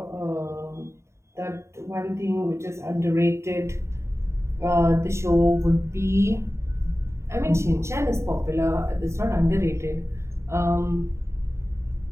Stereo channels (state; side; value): late; left; 0.13 ms